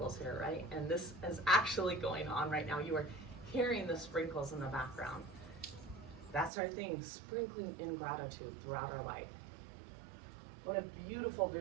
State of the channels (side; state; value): left; drops out; at 6.5 s